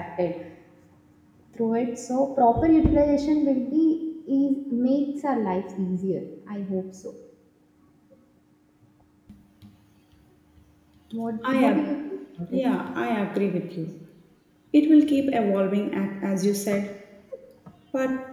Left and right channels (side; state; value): both; identical; correlation 1.00